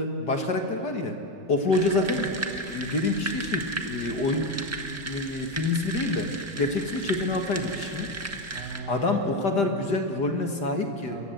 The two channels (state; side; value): normal; both; correlation 0.13